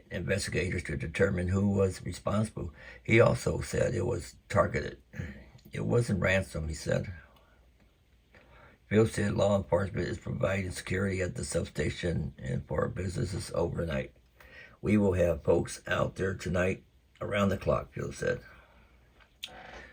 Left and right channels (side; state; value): both; identical; correlation 1.00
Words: investigators to determine who was responsible. He also said it was targeted. It wasn't ransom, he said. Phil said law enforcement is providing security at the substation and for businesses overnight. "We will have folks out there tonight around the clock," Phil said.